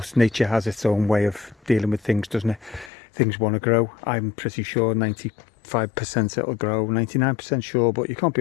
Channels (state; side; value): drops out; right; at 2.9 s